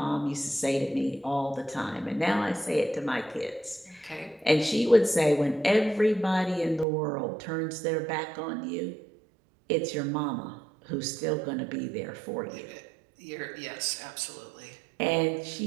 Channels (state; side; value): drops out; left; at 6.9 s